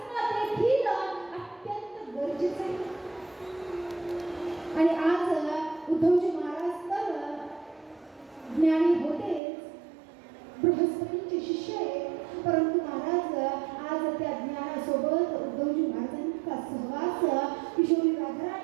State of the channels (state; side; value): drops out; left; at 9.4 s